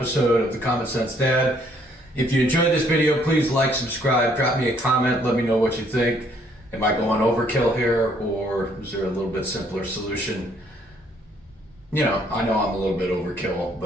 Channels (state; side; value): normal; both; correlation 0.66